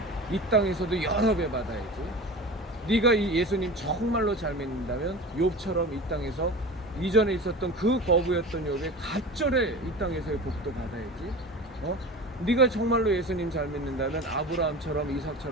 이 땅에서도 여러 배 받아야지. 네가 이 예수님 정말로 잘 믿는다면 욥처럼 이 땅에서 이전에 있었던 그 거부였던 욥의 갑절에 이 땅에서의 복도 받아야지. 네가 정말로 예수님 잘 믿는다면 아브라함처럼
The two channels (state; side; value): normal; both; correlation 0.33